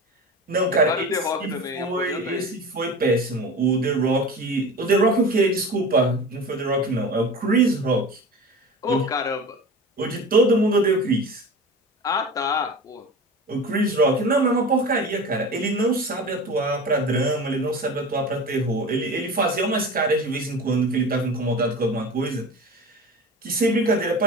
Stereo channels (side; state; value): both; normal; correlation 0.33